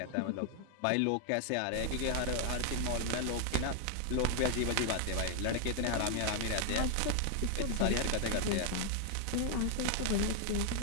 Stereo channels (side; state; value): both; different; correlation 0.00